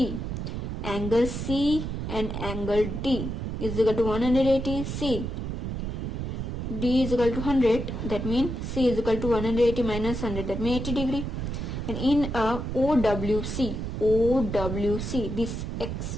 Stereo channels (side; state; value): right; noise; rumble, 4 dB below the sound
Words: Angle C and angle D is equal to 180. C. D is equal to 100, that means C is equal to 180 minus 100, that means 80 degree. And in a OWC, this